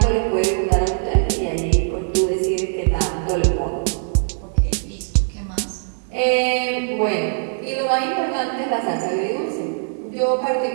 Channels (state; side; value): silent; left; 65 dB below the other